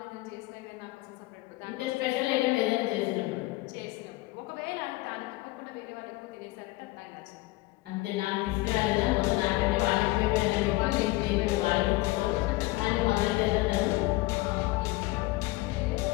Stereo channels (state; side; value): quieter; right; 20.4 dB